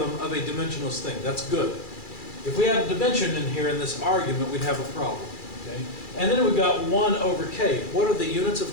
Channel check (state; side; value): late; right; 2.3 ms